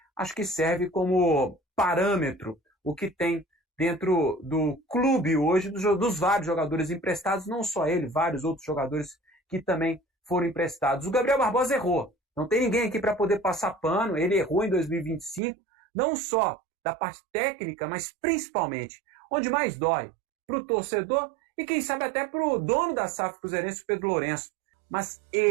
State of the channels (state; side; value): drops out; left; at 15.4 s